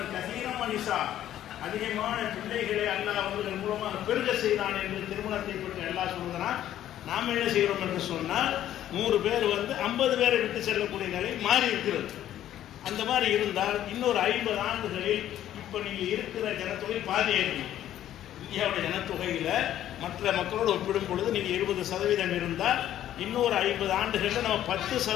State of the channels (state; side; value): quieter; right; 12.0 dB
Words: கசீரம் மனிஷா, அதிகமான பிள்ளைகளை அல்லாஹ் அவர்கள் மூலமாக பெருக செய்தான் என்று திருமணத்தை பற்றி எல்லாம் சொல்கிறான். நாம் என்ன செய்கிறோம் என்று சொன்னால் 100 பேர் 50 பேரை விட்டு செல்லக்கூடிய நிலை மாறி இருக்கிறது. அந்த மாதிரி இருந்தால் இன்னொரு 50 ஆண்டுகளில் இப்போ நீங்கள் இருக்கிற ஜனத்தொகை பாதி இருக்கும். இந்தியாவுடைய ஜனத்தொகையில் மற்ற மக்களோடு ஒப்பிடும் பொழுது நீங்கள் 20% இருந்தால் இன்னொரு 50 ஆண்டுகளில் நம்ம